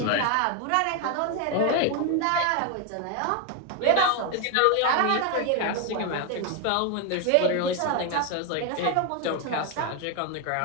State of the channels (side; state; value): both; different; correlation 0.01